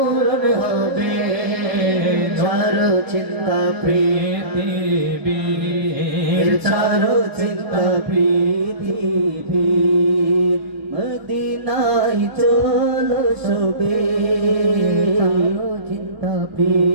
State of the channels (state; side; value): late; left; 1.0 ms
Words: হবে। ছাড়ো চিন্তা পৃথিবী ছাড়ো চিন্তা পৃথিবী মদিনায় চলো সবে ছাড়ো চিন্তা